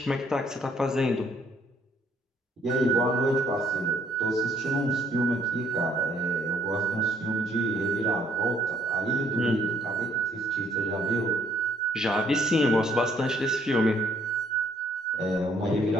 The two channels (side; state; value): both; normal; correlation 0.66